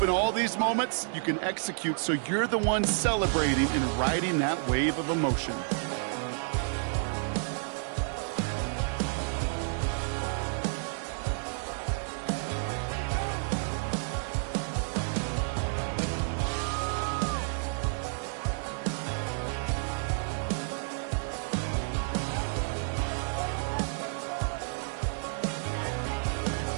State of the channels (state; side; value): silent; left; digital silence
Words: in all these moments you can execute so you're the one celebrating and riding that wave of emotion.